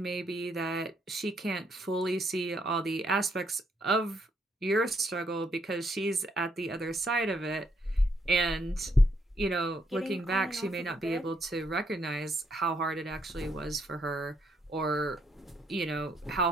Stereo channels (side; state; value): both; normal; correlation 0.74